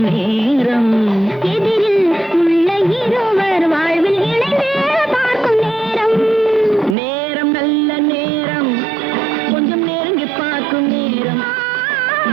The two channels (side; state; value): left; drops out; at 7.0 s